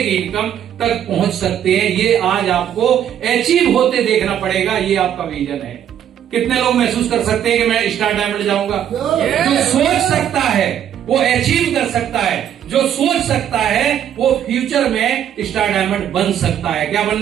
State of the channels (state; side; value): quieter; left; 9.8 dB